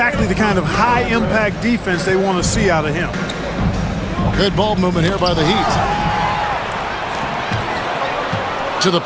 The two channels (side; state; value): both; identical; correlation 1.00